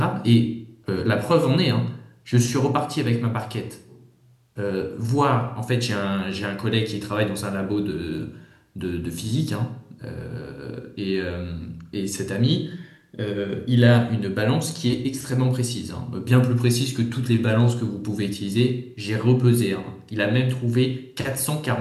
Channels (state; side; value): identical; both; correlation 1.00